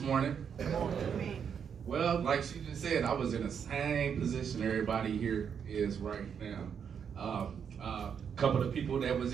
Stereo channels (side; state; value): left; quieter; 7.4 dB